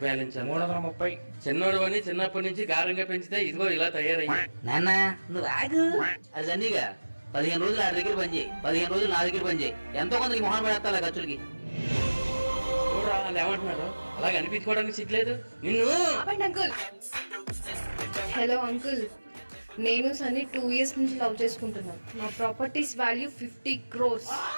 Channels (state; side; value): inverted; both; correlation -1.00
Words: బ్యాలెన్స్ ఎంత? 330. చిన్నోడు అని చిన్నప్పటి నుంచి గారంగా పెంచితే ఇదిగో ఇలా తయారయ్యా. నాన్న నువ్వు ఆగు. అది సన్నీగా 15 రోజులు ఆడి దగ్గర పని చేయి, 15 రోజులు నా దగ్గర పని చేయి. ఎంతో కొంత మొహం పడేస్తా ఖర్చులకి. చూడరా వాళ్ళు ఏమంటున్నారు? అలాగ అనిపించుకోవడానికి సిగ్గులేదు నిన్ను. అంకుల్. హలో అంకుల్, నేను సన్నీ 2 years నుంచి లవ్ చేసుకుంటున్నాను. నా ప్రాపర్టీస్ వాల్యూ 50 crores.